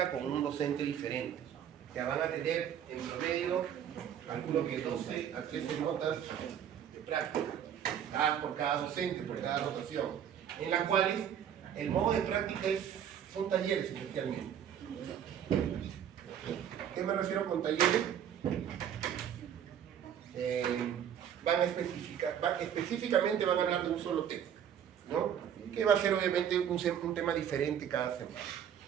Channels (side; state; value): left; quieter; 9.2 dB